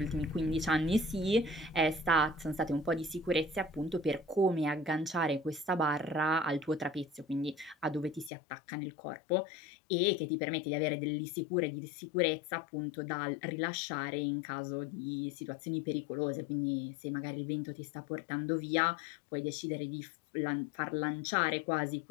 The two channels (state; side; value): drops out; right; at 8.3 s